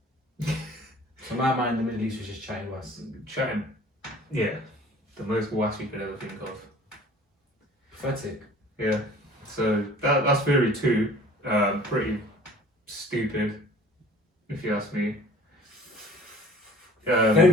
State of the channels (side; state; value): both; normal; correlation 0.49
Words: So in my mind, the Middle East was just chatting was Chatting. Yeah. The most wass you could ever think of. pathetic. Yeah. So that's theory 2. Pretty stupid, if you ask me.